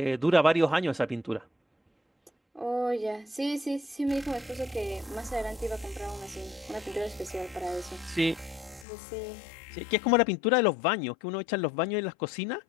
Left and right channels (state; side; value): drops out; right; at 8.8 s